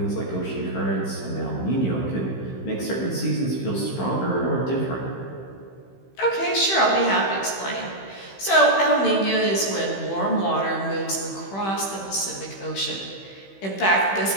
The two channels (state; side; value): late; right; 15 ms